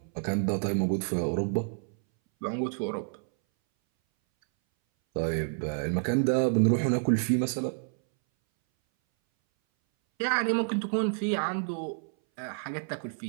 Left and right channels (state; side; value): silent; left; 59 dB below the other